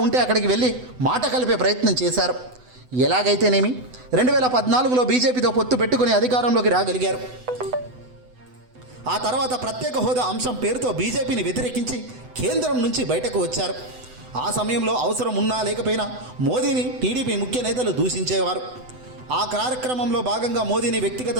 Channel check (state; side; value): late; left; 8.0 ms